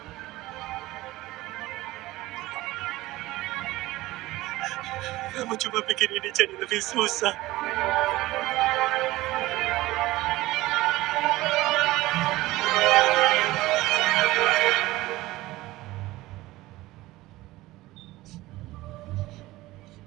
Kamu cuma bikin ini jadi lebih susah.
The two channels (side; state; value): left; quieter; 18.2 dB